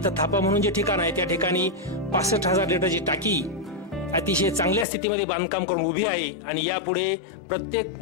थापा म्हणून जे ठिकाण आहे त्या ठिकाणी 65,000 लिटरची टाकी अतिशय चांगल्या स्थितीमध्ये बांधकाम करून उभी आहे. आणि यापुढे प्रत्येक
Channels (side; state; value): right; drops out; at 4.9 s